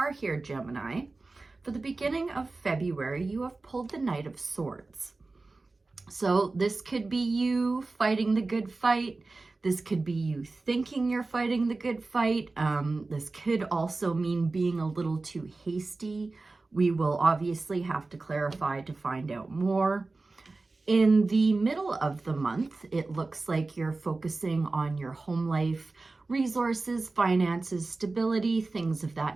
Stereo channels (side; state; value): left; quieter; 3.5 dB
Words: here, Gemini, for the beginning of February, you have pulled the Knight of Swords. So this could be you fighting the good fight. This could be you thinking you're fighting the good fight. This could also mean being a little too hasty. We will obviously have to clarify to find out more. In the middle of the month, it looks like you're focusing on your home life, resources, finances, stability, things of